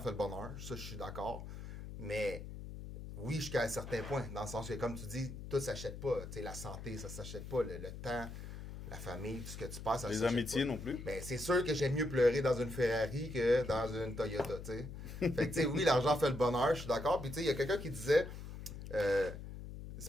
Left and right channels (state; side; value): noise; left; hum, 10 dB below the sound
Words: le bonheur. Ça, je suis d'accord. Mais oui, jusqu'à un certain point, dans le sens que, comme tu dis, tout s'achète pas. Tu sais, la santé, ça s'achète pas. Le temps, la famille, tout ce que tu passes, ça les s'achète amitiés pas. non plus. Ben, c'est sûr que j'aime mieux pleurer dans une Ferrari que dans une Toyota, tu sais. Fait que, tu sais, oui, l'argent fait le bonheur, je suis d'accord. Puis, tu sais, il y a quelqu'un qui disait,